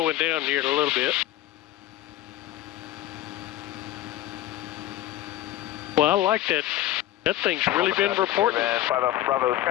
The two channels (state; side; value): quieter; right; 14.1 dB